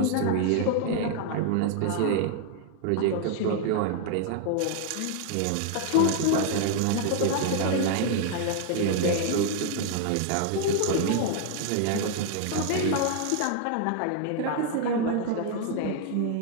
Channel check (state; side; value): different; both; correlation 0.00